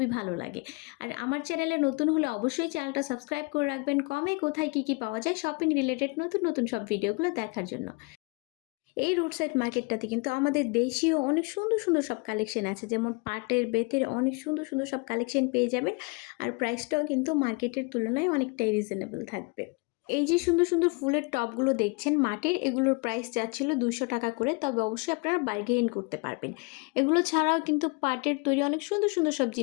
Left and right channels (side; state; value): right; quieter; 29.6 dB